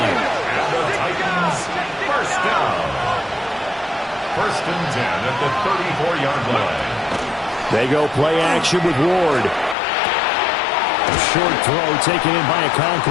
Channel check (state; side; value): drops out; right; at 9.8 s